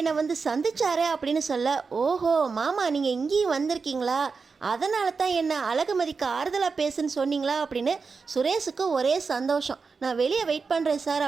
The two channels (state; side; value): quieter; left; 4.9 dB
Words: வந்து சந்திச்சாரே அப்படின்னு சொல்ல, ஓஹோ மாமா நீங்கள் இங்கேயும் வந்திருக்கீங்களா, அதனால தான் என்ன அழகுமதிக்கு ஆறுதலாக பேசுன்னு சொன்னீங்களா அப்படின்னு சுரேஷுக்கு ஒரே சந்தோஷம். நான் வெளியே வெயிட் பண்ணுறேன்